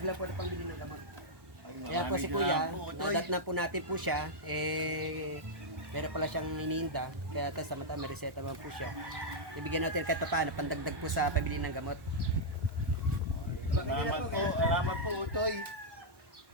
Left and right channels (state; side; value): late; left; 1.1 ms